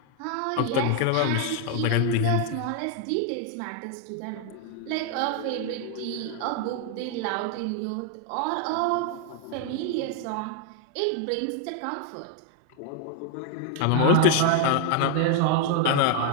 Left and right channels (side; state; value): both; different; correlation 0.00